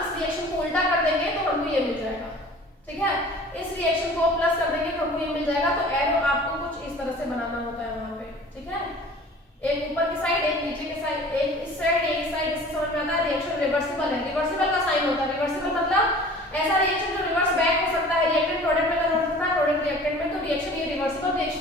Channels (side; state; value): both; normal; correlation 0.45